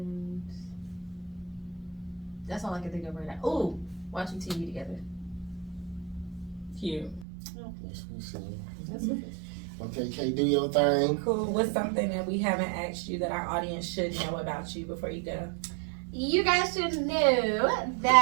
that's all I can think of right now. Oh, watching TV together. Cute. That's what's up. Okay, Kay, do your thing. Cool. What's something that we haven't asked you that our audience should know about you before you go? You guys should know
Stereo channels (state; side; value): drops out; left; at 7.2 s